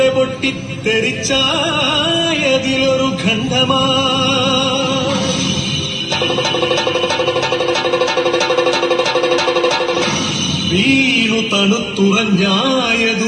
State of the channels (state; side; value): identical; both; correlation 1.00